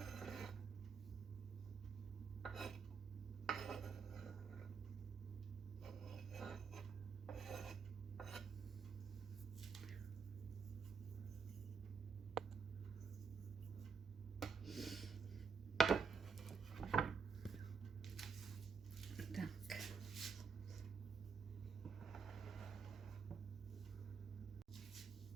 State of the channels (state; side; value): quieter; left; 5.5 dB